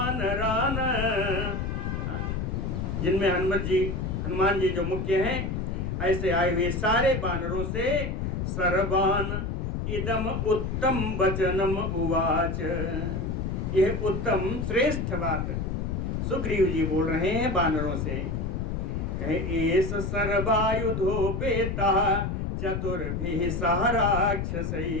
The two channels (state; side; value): noise; left; rumble, 2 dB below the sound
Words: जिनमें हनुमान जी जो मुख्य हैं, ऐसे आए हुए सारे वानरों से सर्वान इदम उत्तम वचनम उवाच, यह उत्तम श्रेष्ठ बात सुग्रीव जी बोल रहे हैं वानरों से। एष सर्वायुधोपेतः चतुर्भिः सह